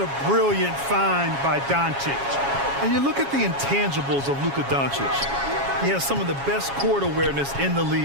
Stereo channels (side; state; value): left; late; 7.3 ms